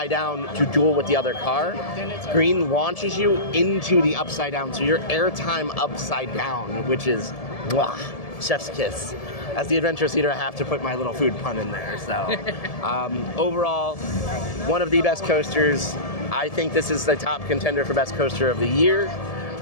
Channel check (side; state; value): right; late; 1.7 ms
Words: down to duel with the other car, green launches you into the upside down, so your airtime upside down, which is, mwah, chef's kiss. As the adventurous eater, I have to put my little food pun in there. So overall, one of the best coasters. I think this is the top contender for best coaster of the year.